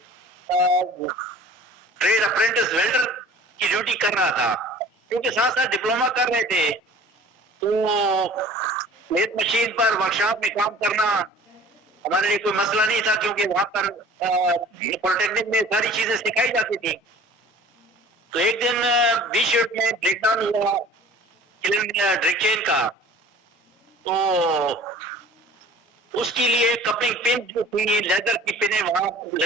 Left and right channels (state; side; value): normal; both; correlation 0.46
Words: trade apprentice welder کی ڈیوٹی کر رہا تھا، کیونکہ ساتھ ساتھ ڈپلوما کر رہے تھے. تو لیت مشین پر ورکشاپ میں کام کرنا ہمارے لیے کوئی مسئلہ نہیں تھا، کیونکہ وہاں پر پولیٹیکنک میں ساری چیزیں سکھائی جاتی تھی. تو ایک دن 20 شفٹ میں بریک ڈاؤن ہوا ڈرک چین کا. تو اس کے لیے کپنگ پن جو تھی، لیدر کی پنیں وہاں